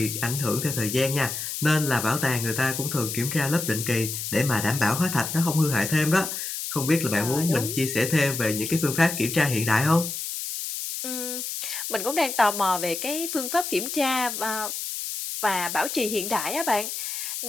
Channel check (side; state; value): left; noise; hiss, 5 dB below the sound